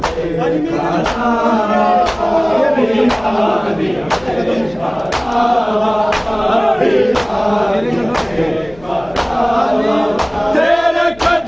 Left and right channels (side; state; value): left; noise; hum, 24 dB below the sound